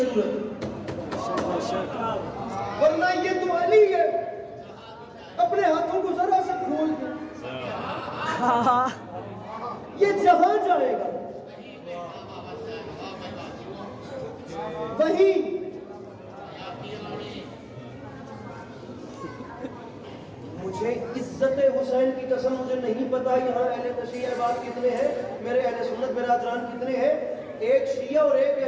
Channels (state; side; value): identical; both; correlation 1.00